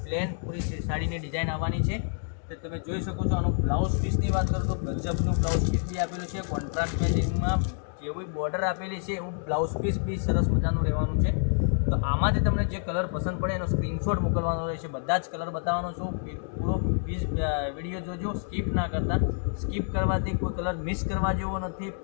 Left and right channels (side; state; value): right; silent; 59 dB below the other